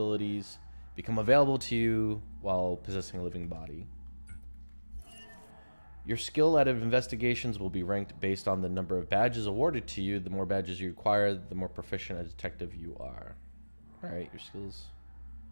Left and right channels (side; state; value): both; inverted; correlation -1.00